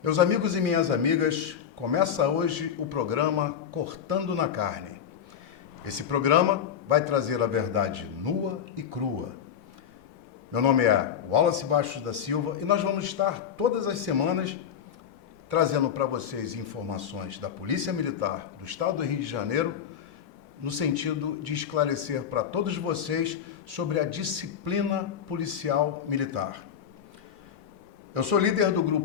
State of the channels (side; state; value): right; quieter; 8.4 dB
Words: Meus amigos e minhas amigas, começa hoje o programa Cortando na Carne. Esse programa vai trazer a verdade nua e crua. Meu nome é Wallace Bastos da Silva e nós vamos estar todas as semanas trazendo para vocês informações da Polícia Militar do Estado do Rio de Janeiro, no sentido de esclarecer para todos vocês sobre a disciplina policial militar. Eu sou líder do